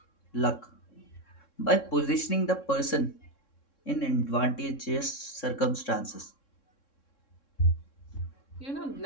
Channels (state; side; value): late; right; 3.6 ms